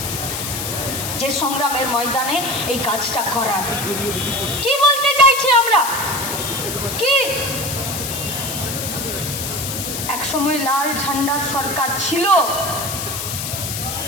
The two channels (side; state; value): left; noise; hiss, 4 dB below the sound